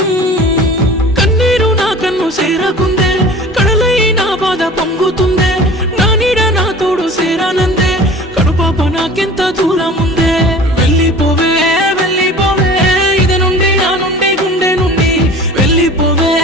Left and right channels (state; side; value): normal; both; correlation 0.41